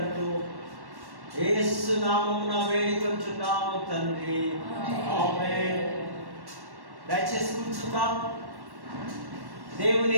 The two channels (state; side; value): late; left; 1.1 ms